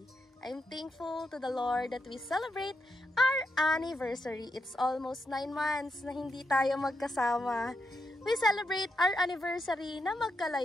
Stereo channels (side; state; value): both; normal; correlation 0.83